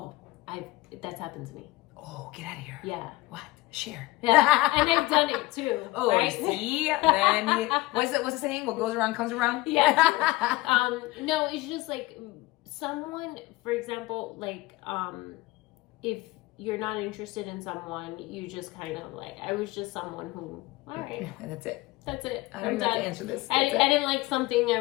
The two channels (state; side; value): quieter; right; 20.3 dB